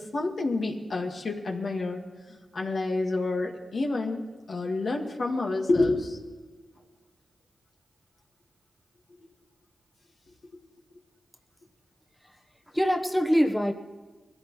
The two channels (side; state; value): both; normal; correlation 0.95